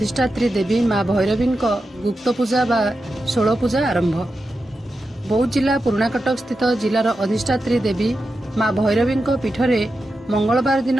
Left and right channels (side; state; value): both; normal; correlation 0.90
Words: देवी माँ भैरवी गुप्त पूजा बा 16 पूजा आरंभ। बौद्ध जिला पुराणा कटक स्थित जिलार अधिष्ठात्री देवी माँ भैरवी पीठरे मंगलवार